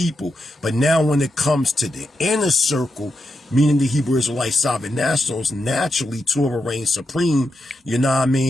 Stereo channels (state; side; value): normal; both; correlation 0.86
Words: But now when it comes to the inner circle, meaning the Hebrew Israelite sovereign nationals, naturally Torah reigns supreme, you know what I